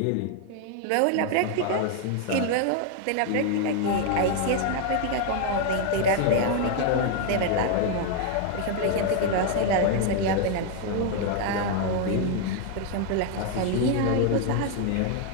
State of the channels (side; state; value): both; different; correlation 0.01